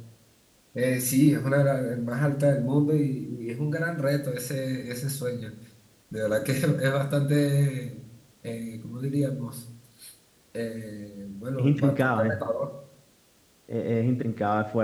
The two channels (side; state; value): both; identical; correlation 1.00